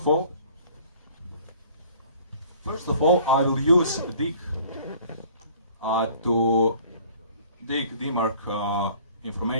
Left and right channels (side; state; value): both; inverted; correlation -0.52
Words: all, I will use dig to dig DMARC